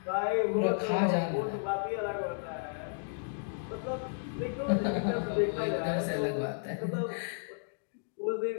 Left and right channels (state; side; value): silent; right; digital silence